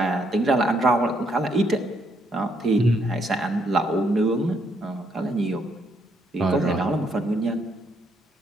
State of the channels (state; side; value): normal; both; correlation 0.73